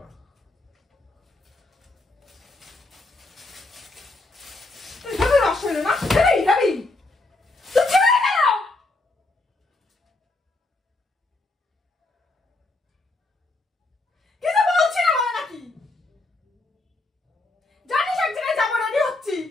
তুই যাবি নষ্ট হইলো না? যাবি? তুই ছিলি কেন? কিছু বলছি না বলে নাকি? জানিস এক জায়গায় যাবো, রেডি হচ্ছি।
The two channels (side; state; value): right; quieter; 3.1 dB